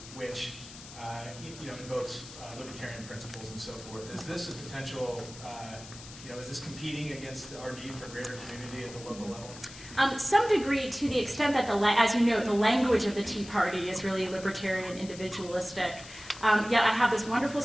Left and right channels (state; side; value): noise; left; hiss, 16 dB below the sound